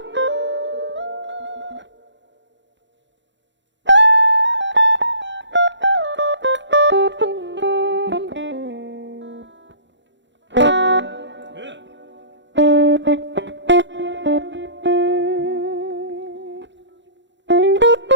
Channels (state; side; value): late; left; 0.53 ms